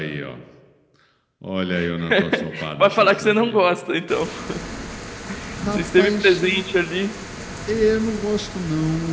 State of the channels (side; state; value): both; identical; correlation 1.00